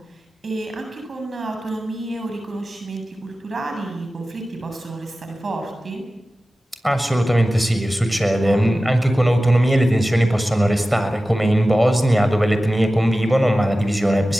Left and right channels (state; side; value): normal; both; correlation 0.95